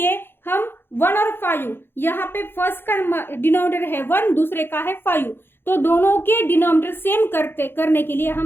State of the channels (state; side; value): late; right; 0.10 ms